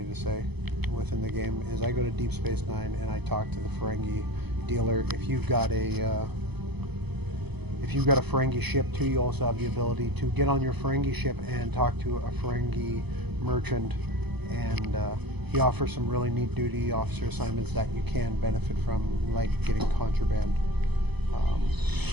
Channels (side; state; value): left; late; 0.99 ms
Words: to say within the game, is I go to Deep Space Nine and I talk to the Ferengi dealer. If you've got a Ferengi ship too, you also have the ability to get on your Ferengi ship and talk to a Ferengi merchant, and he offers some really neat duty officer assignments that you can benefit from, like getting contraband.